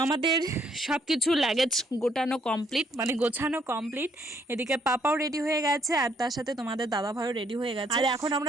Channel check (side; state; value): both; normal; correlation 0.69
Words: আমাদের সবকিছু লাগেজ গোটানো কমপ্লিট, মানে গোছানো কমপ্লিট। এদিকে পাপাও রেডি হয়ে গেছে, আর তার সাথে তোমাদের দাদা ভাইও রেডি হয়ে গেছে। আর এখন